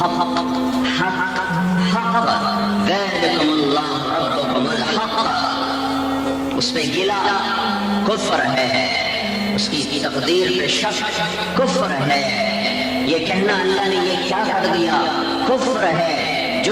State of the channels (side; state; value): both; identical; correlation 1.00